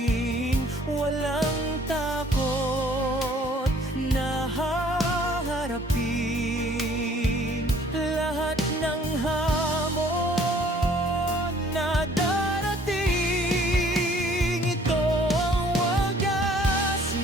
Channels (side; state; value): both; normal; correlation 0.57